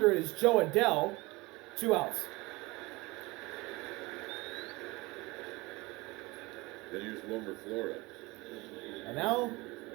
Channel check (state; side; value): quieter; left; 23.1 dB